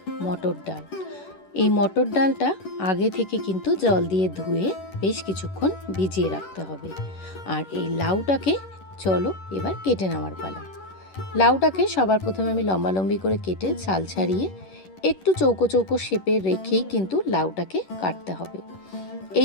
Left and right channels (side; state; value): right; late; 11 ms